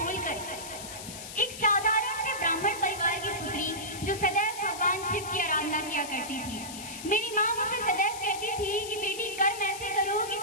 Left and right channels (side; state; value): left; noise; hiss, 11 dB below the sound